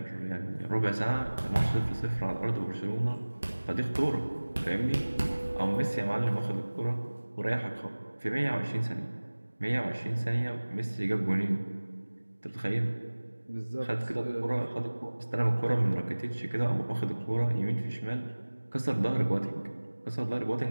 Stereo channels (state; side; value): inverted; both; correlation -1.00